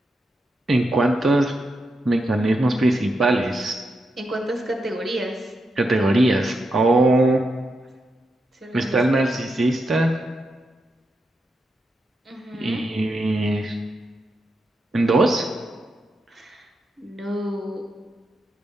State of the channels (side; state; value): both; normal; correlation 0.85